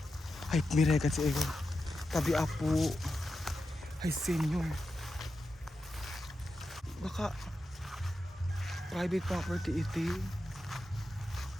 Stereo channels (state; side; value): normal; both; correlation 0.89